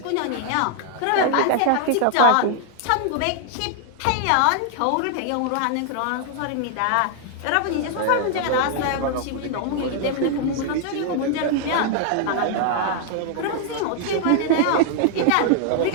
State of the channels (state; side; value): different; both; correlation 0.00